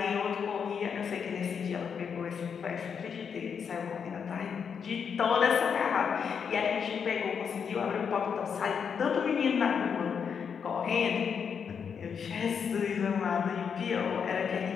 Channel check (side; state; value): right; quieter; 6.8 dB